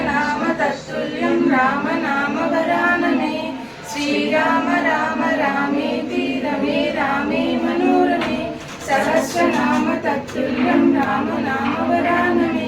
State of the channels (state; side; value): identical; both; correlation 1.00